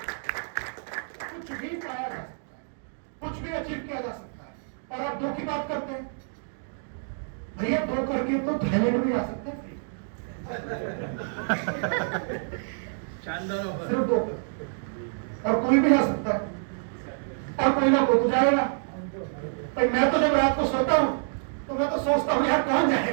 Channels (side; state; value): left; silent; digital silence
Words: कुछ भी पाया जा सकता है, कुछ भी अचीव किया जा सकता है, और आप 2 की बात करते हैं भैया, 2 करके तो थाईलैंड भी आ सकते हैं। शानदार ऑफर। सिर्फ 2 और कोई भी आ सकता है, और कोई ना कोई तो जाएगा। भाई मैं तो जब रात को सोता हूँ तो मैं तो सोचता हूँ यार कौन